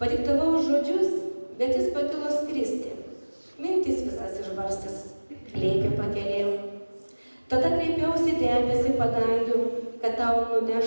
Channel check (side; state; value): both; inverted; correlation -1.00